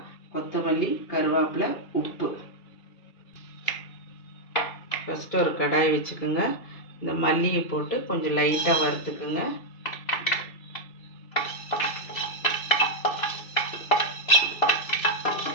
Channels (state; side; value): late; right; 2.6 ms